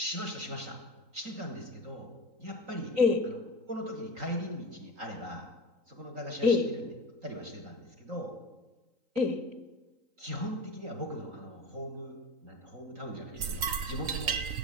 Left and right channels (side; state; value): left; late; 3.9 ms